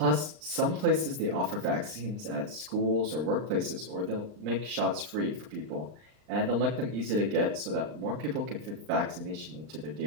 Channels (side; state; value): left; late; 39 ms